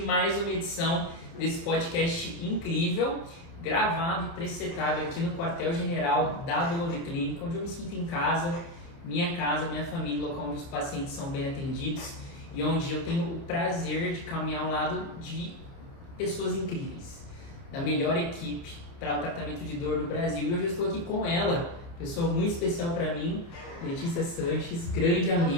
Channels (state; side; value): late; right; 30 ms